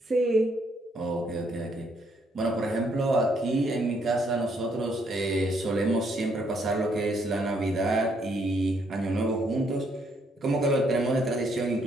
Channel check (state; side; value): normal; both; correlation 0.71